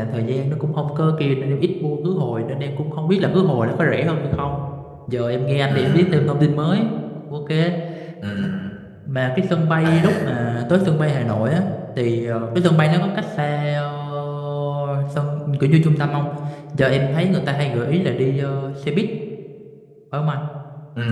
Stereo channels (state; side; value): identical; both; correlation 1.00